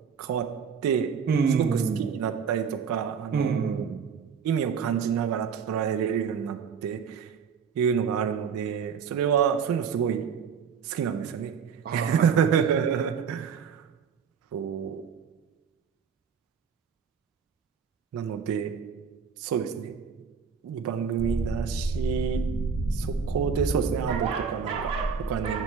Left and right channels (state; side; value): quieter; left; 6.5 dB